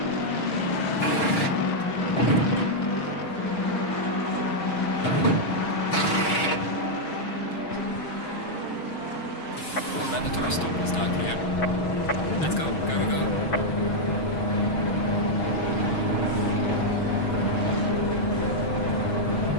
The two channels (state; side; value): late; right; 6.1 ms